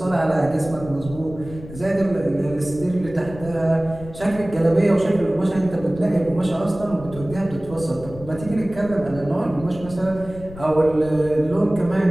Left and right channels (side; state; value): left; noise; rumble, 15 dB below the sound